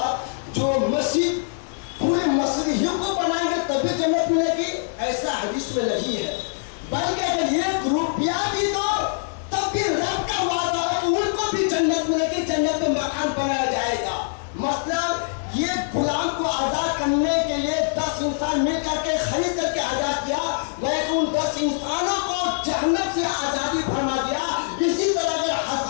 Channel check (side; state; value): right; silent; 63 dB below the other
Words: جو مسجد پورے مسجد ہی کو بنائیں گے تبھی جنت ملے گی, ایسا حدیث میں نہیں ہے. بلکہ اگر ایک روپیہ بھی دو تب بھی رب کا وعدہ ہے کہ ان کو بھی جنت ملے گی, جنت میں مکان بنایا جائے گا. مطلب یہ غلام کو آزاد کرنے کے لیے 10 انسان مل کر کے خرید کر کے آزاد کیا, لیکن ان 10 انسانوں کو جہنم سے آزادی فرما دیا. اسی طرح اگر